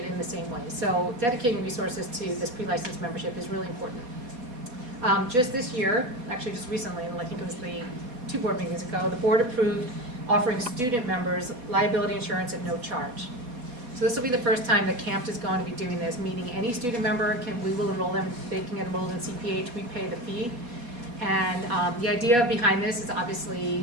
in the same way. So dedicating resources to this pre-licensed membership is really important. Just this year, actually just recently, and I think it was the 2 board meetings ago, the board approved offering student members liability insurance at no charge. So this will be the first time that CAMFT is going to be doing this, meaning any student member we will enroll them, they can get enrolled in CPH, we pay the fee. And the idea behind this is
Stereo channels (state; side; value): late; left; 4.2 ms